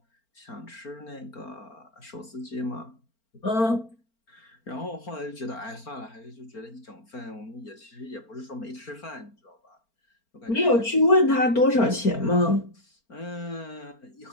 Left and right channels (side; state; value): right; late; 4.4 ms